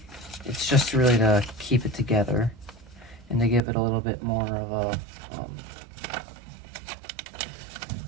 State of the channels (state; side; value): drops out; left; at 3.6 s